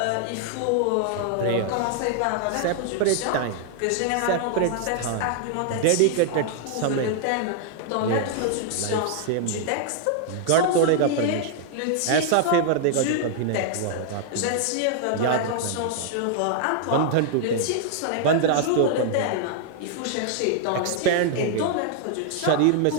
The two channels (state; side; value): different; both; correlation 0.00